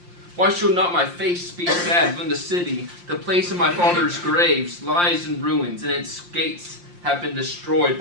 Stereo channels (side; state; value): left; late; 5.7 ms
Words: Why should not my face be sad when the city, the place of my father's graves, lies in ruins, and its gates have been destroyed